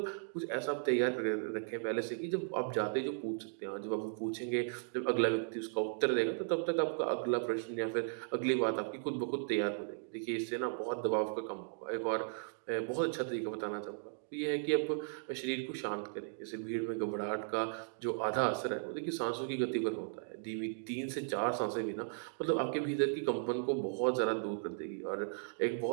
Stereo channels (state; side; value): silent; left; digital silence